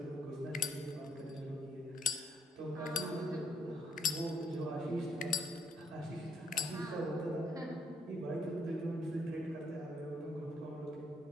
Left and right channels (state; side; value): normal; both; correlation 0.68